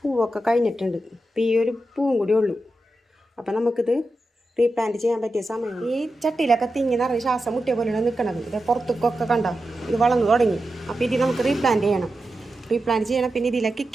കഴിഞ്ഞിട്ടുണ്ട്. ഇപ്പോൾ ഈ ഒരു പൂവും കൂടി ഉള്ളൂ. അപ്പോൾ നമുക്കിത് റീപ്ലാന്റ് ചെയ്യാൻ പറ്റിയ സമയം. ഈ ചട്ടിയിലൊക്കെ തിങ്ങി നിറഞ്ഞ് ശ്വാസം മുട്ടിയ പോലെയാണ് നിൽക്കണത്. ഇത് പുറത്തേക്കൊക്കെ കണ്ട ഇത് വളർന്നു തുടങ്ങി. അപ്പോൾ ഇത് നമുക്ക് റീപ്ലാന്റ് ചെയ്യണം. പിന്നെ ഇതിലെ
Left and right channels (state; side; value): normal; both; correlation 0.90